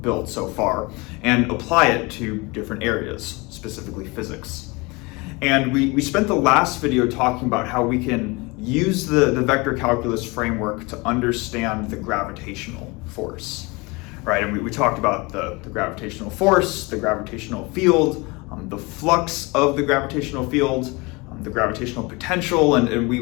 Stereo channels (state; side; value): quieter; right; 25.8 dB